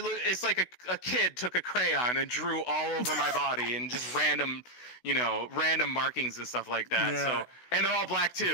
like a kid took a crayon and drew all over my body and just random markings and stuff like that. Yeah. So, and they're all black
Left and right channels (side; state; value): right; late; 16 ms